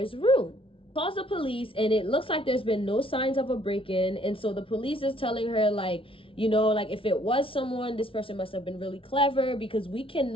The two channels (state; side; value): late; right; 0.26 ms